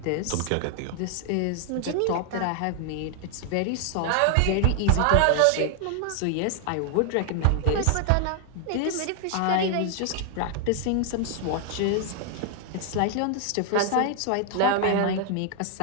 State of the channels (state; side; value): different; both; correlation 0.00